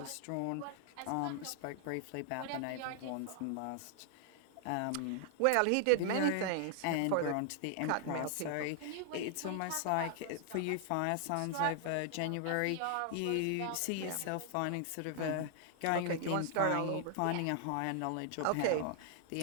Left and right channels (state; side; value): different; both; correlation 0.00